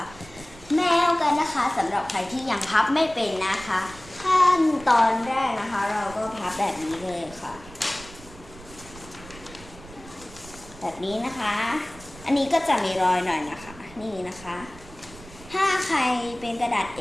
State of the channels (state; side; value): noise; right; rumble, 19 dB below the sound